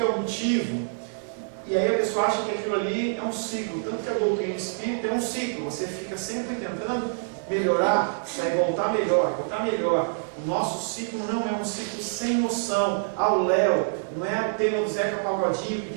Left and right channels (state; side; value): silent; left; digital silence